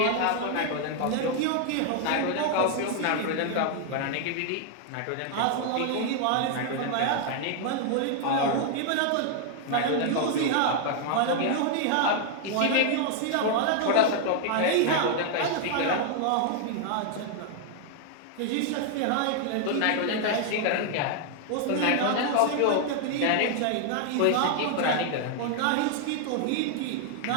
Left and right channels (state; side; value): different; both; correlation 0.00